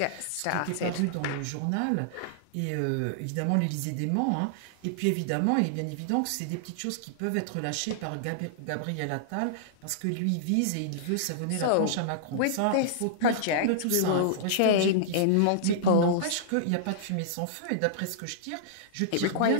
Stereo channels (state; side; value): different; both; correlation -0.02